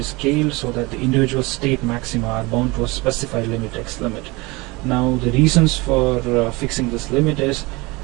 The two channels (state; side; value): quieter; left; 24.2 dB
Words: scaled so that the individual state maxima are bound to a specified limit, x limit. Now the reasons for fixing this limit is